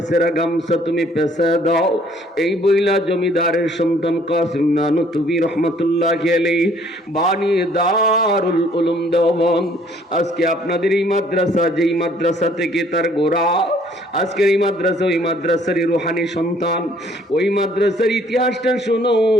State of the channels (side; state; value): both; normal; correlation 0.60